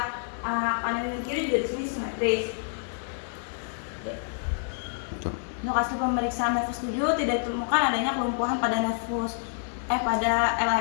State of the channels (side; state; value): right; silent; 59 dB below the other